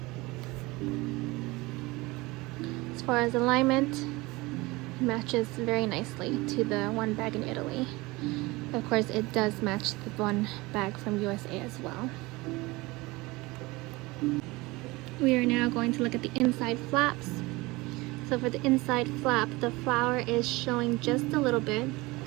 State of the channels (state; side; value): quieter; left; 22.3 dB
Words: As far as alignment, it matches very nicely to the one bag in Italy. Of course, it does match the one bag from USA as well. We are now going to look at the inside flaps. So for the inside flap, the flower is showing just a little bit